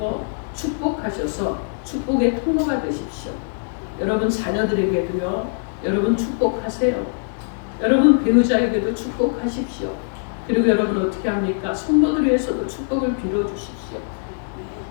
축복하셔서 축복의 통로가 되십시오. 여러분 자녀들에게도요, 여러분 축복하세요. 여러분 배우자에게도 축복하십시오. 그리고 여러분 어떻게 합니까? 성도들 위해서도 축복을 빌어주십시오.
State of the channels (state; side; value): silent; right; digital silence